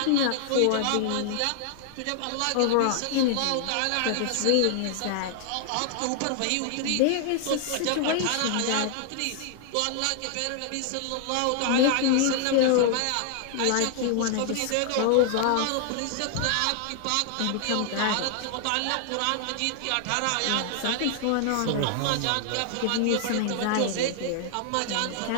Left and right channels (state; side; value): different; both; correlation 0.00